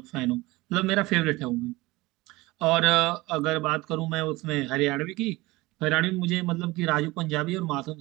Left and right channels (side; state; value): left; quieter; 20.9 dB